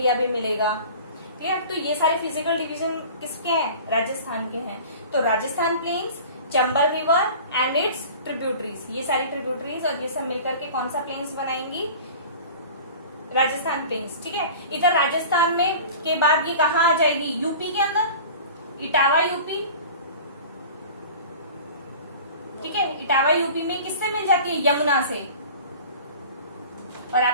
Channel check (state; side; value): inverted; both; correlation -0.40